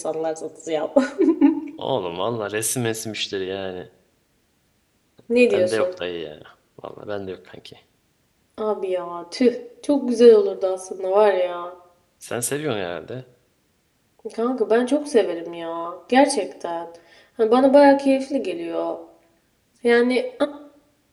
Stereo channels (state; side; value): identical; both; correlation 1.00